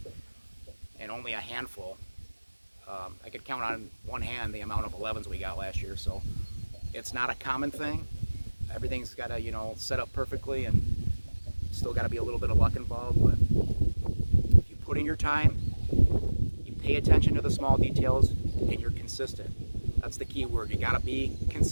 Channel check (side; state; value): both; inverted; correlation -1.00